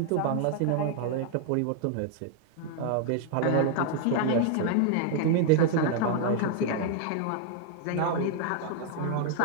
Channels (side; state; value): both; different; correlation 0.00